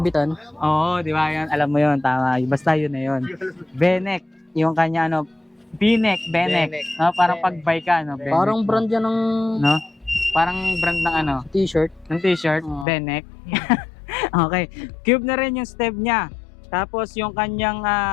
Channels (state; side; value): drops out; right; at 12.9 s